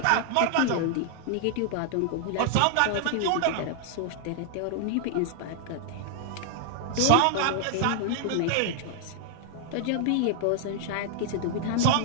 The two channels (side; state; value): both; different; correlation 0.00